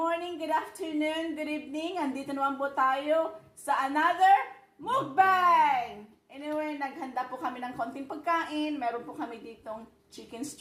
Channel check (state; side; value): identical; both; correlation 1.00